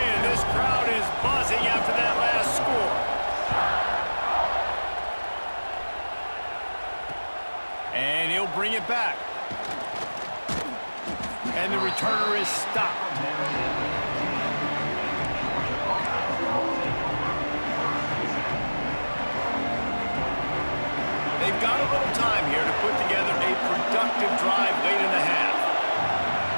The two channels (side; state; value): both; inverted; correlation -1.00